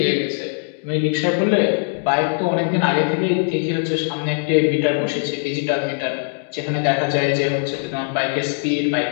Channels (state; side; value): silent; right; 65 dB below the other